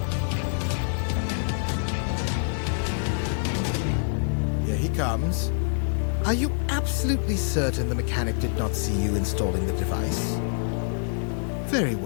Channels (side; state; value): right; silent; digital silence